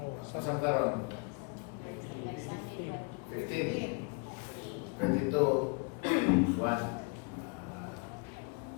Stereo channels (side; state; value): right; quieter; 34.0 dB